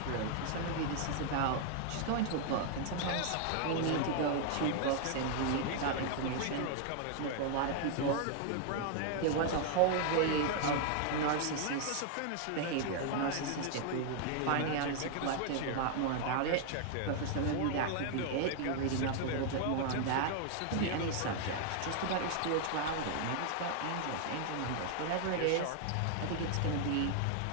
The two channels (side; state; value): both; different; correlation 0.00